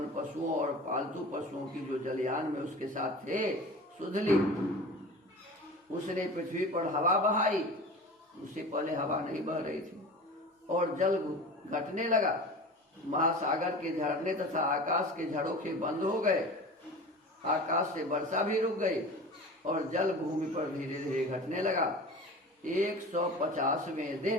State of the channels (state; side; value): normal; both; correlation 0.35